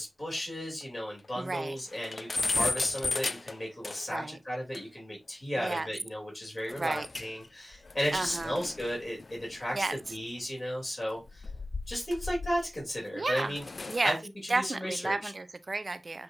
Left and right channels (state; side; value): normal; both; correlation 0.95